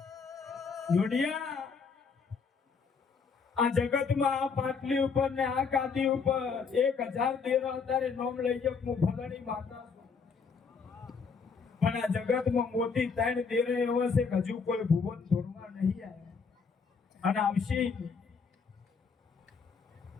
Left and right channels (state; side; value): quieter; right; 5.4 dB